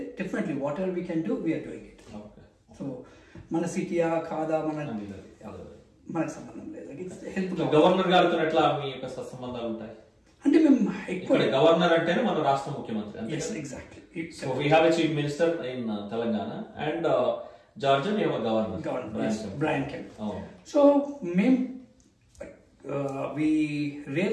definitely whatever we can do we're doing it. So మన సిటీయా కాదా మనకు సంబంధం లేదు. హెల్ప్ గవర్నర్ గారితో ఎట్లా మీ యొక్క సంబంధాలు ఉంటాయి అంటే మేము ఇక్కడ గవర్నర్ అంటేనే మన రాష్ట్ర ముఖ్యమంత్రి. Exactly. So we have a chief minister in Telangana and Georgia we have a governor, Brian Kemp. So మేము we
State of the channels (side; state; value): both; identical; correlation 1.00